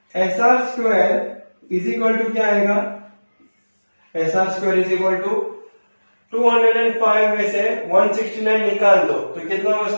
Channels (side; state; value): both; inverted; correlation -1.00